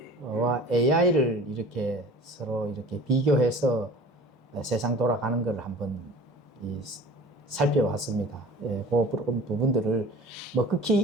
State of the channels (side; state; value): both; normal; correlation 0.42